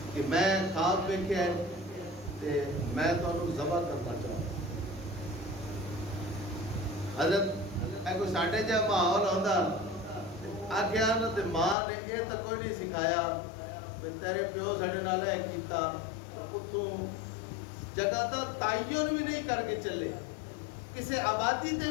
کہ میں خواب ویکھیا ہے تے میں تانوں ذبح کرنا چاہتا. حضرت اے کوئی ساڈے جا ماحول ہوندا آکھیا نہ تے ماں نے یہ تو کوئی نہیں سکھایا تیرے پیو ساڈے نال اے کیتا اتوں جگہ تو تعین بھی نہیں کر کے چلے کسے آبادی تے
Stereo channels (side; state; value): right; drops out; at 11.8 s